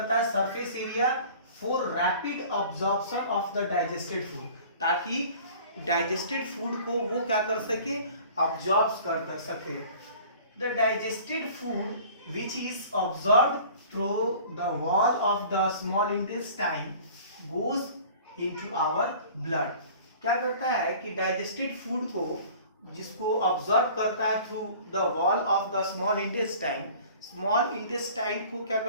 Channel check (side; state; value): both; inverted; correlation -0.46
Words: surface area for rapid absorption of the digested food, ताकि डाइजेस्टेड फूड को वो क्या कर सके, अब्जॉर्ब कर सके। The digested food which is absorb through the wall of the small intestine goes into our blood. क्या करता है कि डाइजेस्टेड फूड को जिसको ऑब्जर्व करता है through the wall of the small intestine को क्या